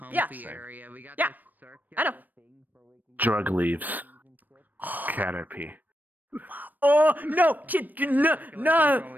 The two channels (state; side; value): late; left; 0.086 ms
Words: area. We got I know. Drug leaves. Caterpie. Oh no, kid, no, no. When